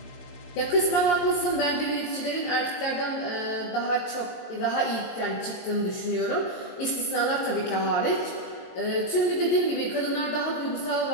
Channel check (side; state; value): right; late; 23 ms